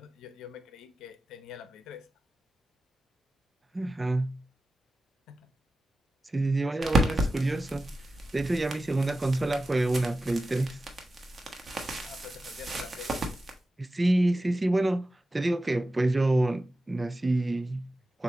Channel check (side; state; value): both; normal; correlation 0.94